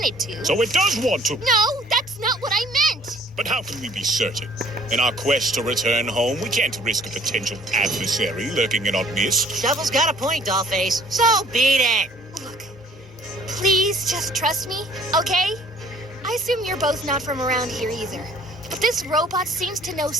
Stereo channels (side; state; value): both; normal; correlation 0.56